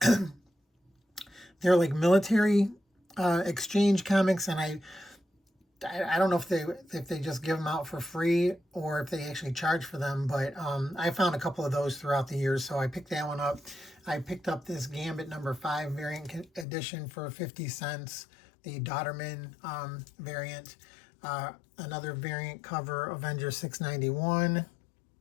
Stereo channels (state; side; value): drops out; right; at 16.7 s